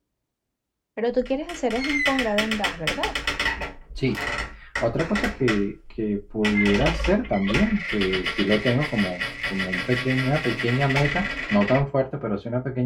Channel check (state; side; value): identical; both; correlation 1.00